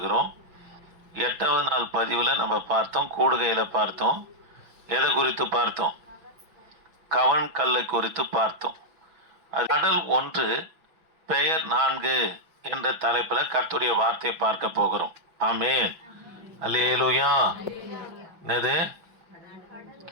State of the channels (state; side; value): late; left; 6.1 ms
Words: 8வது நாள் பதிவில் நம்ம பார்த்தோம், கூடுகையில் பார்த்தோம். எதை குறித்து பார்த்தோம்? கவன் கல்லை குறித்து பார்த்தோம். கடல் 1 பெயர் 4 என்ற தலைப்பில் கர்த்தருடைய வார்த்தையை பார்க்க போகிறோம். ஆமென், அல்லேலூயா. என்னது?